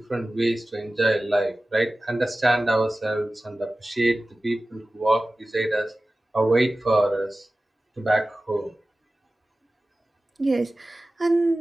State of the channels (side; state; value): both; normal; correlation 0.96